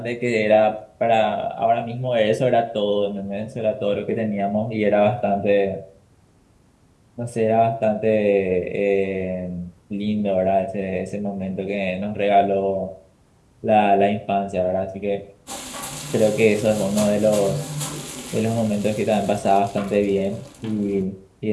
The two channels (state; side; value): identical; both; correlation 1.00